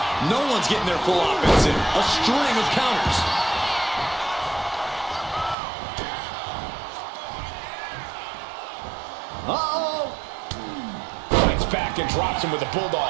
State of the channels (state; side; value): drops out; left; at 5.6 s